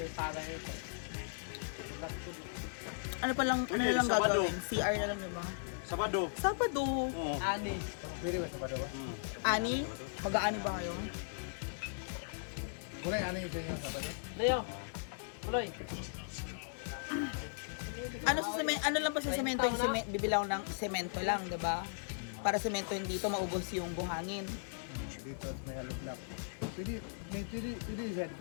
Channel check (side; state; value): right; silent; digital silence